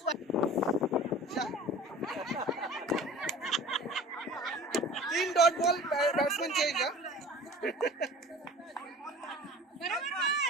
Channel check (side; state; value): both; normal; correlation 0.42